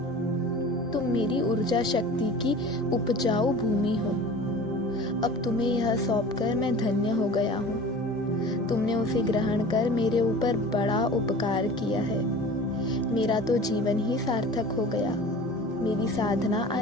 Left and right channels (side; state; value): both; normal; correlation 0.40